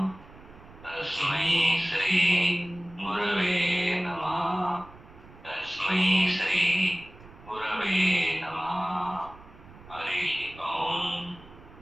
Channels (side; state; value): right; noise; rumble, 21 dB below the sound